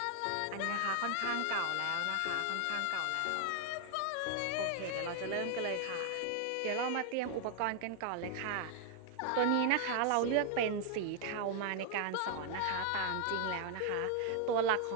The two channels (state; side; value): different; both; correlation 0.00